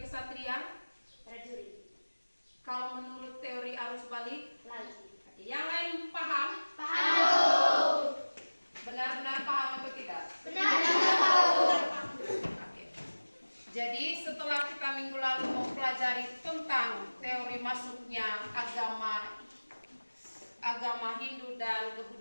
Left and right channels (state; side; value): inverted; both; correlation -1.00